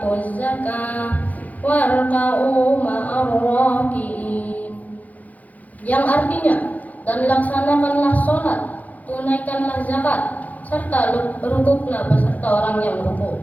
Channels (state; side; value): late; right; 0.077 ms